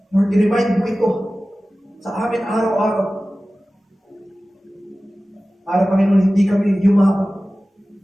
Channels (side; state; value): both; normal; correlation 0.96